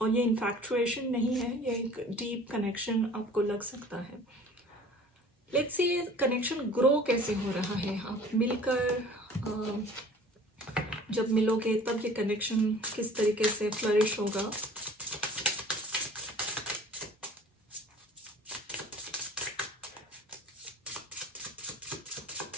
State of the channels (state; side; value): normal; both; correlation 0.47